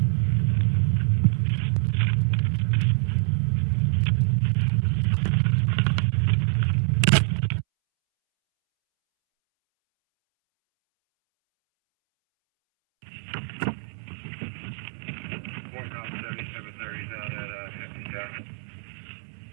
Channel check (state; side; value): silent; left; 62 dB below the other